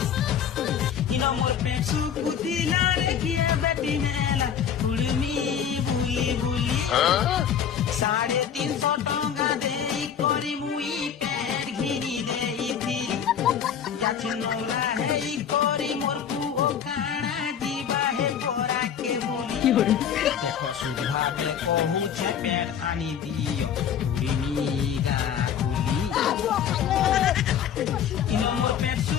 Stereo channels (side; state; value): right; quieter; 8.5 dB